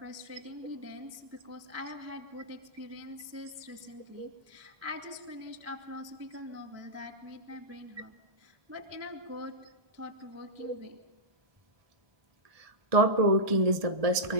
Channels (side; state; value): left; late; 1.2 ms